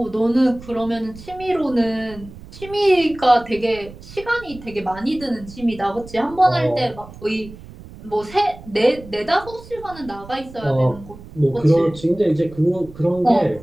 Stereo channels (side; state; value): right; noise; rumble, 17 dB below the sound